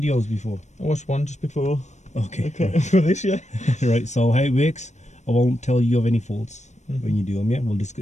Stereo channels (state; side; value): late; right; 0.34 ms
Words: before? I watched one just before. Okay. Right. For this, yeah. Right, so how it works, I won't tell you of any faults when you do them, yeah?